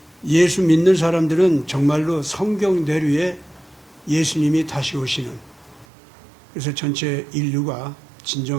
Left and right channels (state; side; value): drops out; left; at 5.9 s